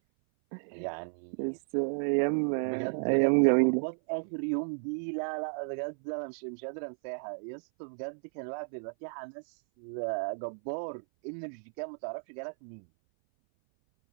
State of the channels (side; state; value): left; silent; 56 dB below the other